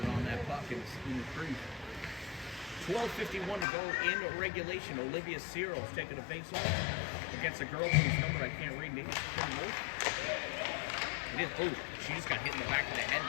it on that puck in the crease. 12:51 to go in regulation. Olivia Cyril's taking a face off against a girl whose number I can't read. Maybe it is. Oh, she just got hit in the back of the head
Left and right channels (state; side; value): drops out; right; at 3.7 s